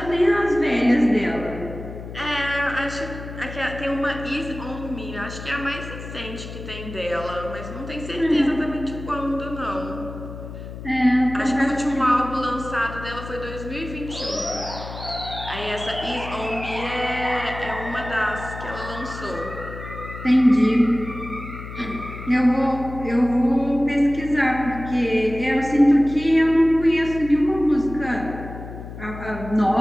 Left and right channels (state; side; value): noise; left; hum, 11 dB below the sound